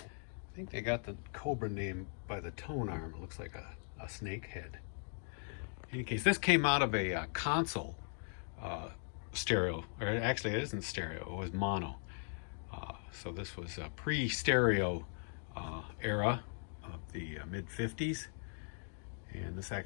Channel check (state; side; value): silent; right; 52 dB below the other